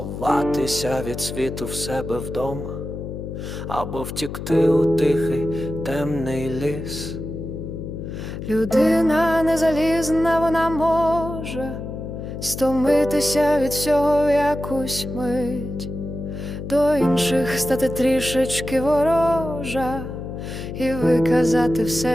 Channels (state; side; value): noise; left; hum, 8 dB below the sound